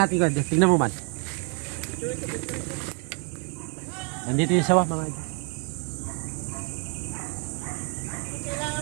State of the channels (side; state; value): left; quieter; 37.6 dB